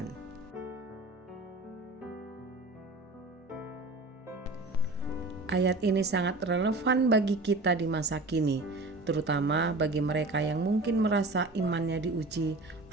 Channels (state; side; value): quieter; left; 3.0 dB